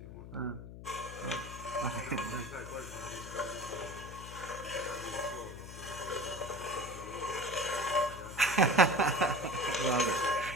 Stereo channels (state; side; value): noise; left; hum, 12 dB below the sound